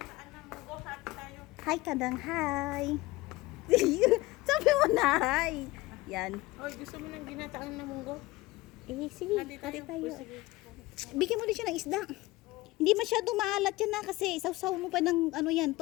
Hi, kadang, hi. Sabi mo na, hi. Yan. Oy, gusto mo ng ginataan na munggo? Eh, sige, hati tayo. Bigyan mo din siya ng isda. Hindi masyado maalat yan na kasi sausaw mo pa ng ano yan,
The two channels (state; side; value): quieter; right; 20.0 dB